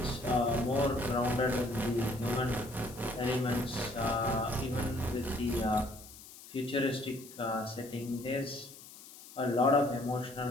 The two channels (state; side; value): noise; left; hiss, 18 dB below the sound